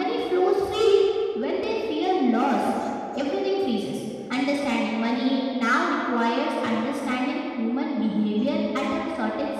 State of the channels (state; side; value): identical; both; correlation 1.00